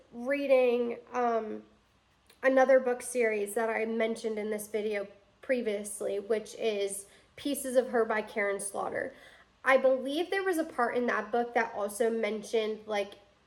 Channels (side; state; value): both; identical; correlation 1.00